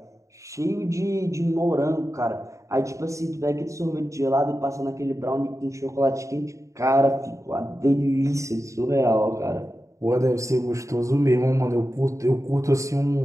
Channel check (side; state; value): left; late; 0.15 ms